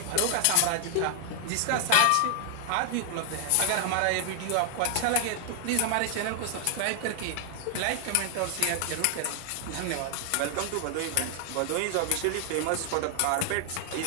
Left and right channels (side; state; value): both; different; correlation 0.00